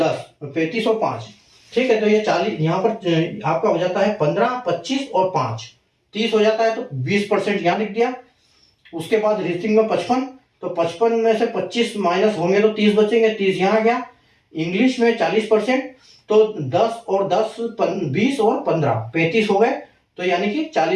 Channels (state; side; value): identical; both; correlation 1.00